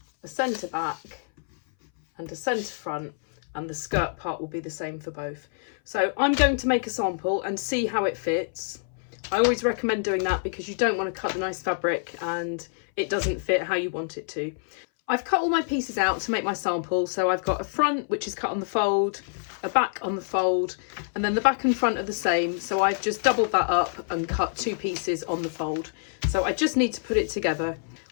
a centre back and a centre front, and the skirt part will be the same for both. So I'm going to make a sample and see how it fits. I always recommend doing that because you don't want to cut the nice fabric and it doesn't fit how you want it to. I've cut all my pieces out to make my sample. So I've got a front which is cut on the fold, a back on the fold, and then the back and front are the same. So I've just doubled that up and cut two pieces on the fold. So I just need to put it together.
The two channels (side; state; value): right; silent; 59 dB below the other